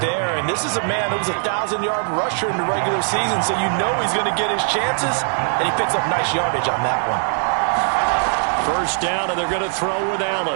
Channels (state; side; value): silent; left; 65 dB below the other